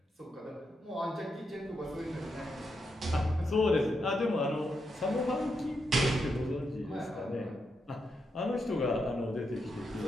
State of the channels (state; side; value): normal; both; correlation 0.83